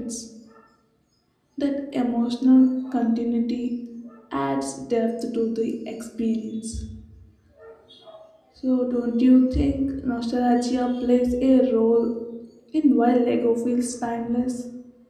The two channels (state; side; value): identical; both; correlation 1.00